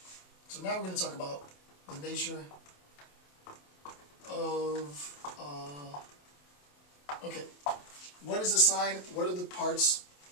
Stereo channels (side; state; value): right; late; 27 ms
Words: So now we're going to talk about the nature of, okay, what is a sign? What are the parts?